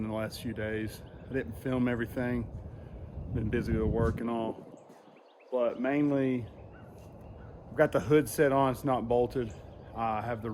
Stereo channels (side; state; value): both; identical; correlation 1.00